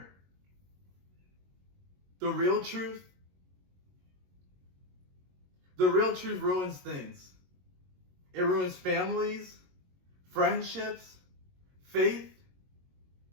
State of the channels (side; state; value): left; late; 22 ms